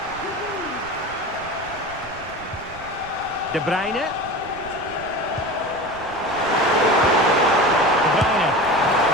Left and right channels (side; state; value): right; noise; rumble, 18 dB below the sound